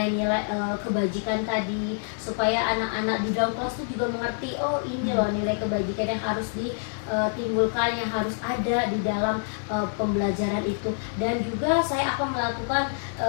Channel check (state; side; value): silent; right; 61 dB below the other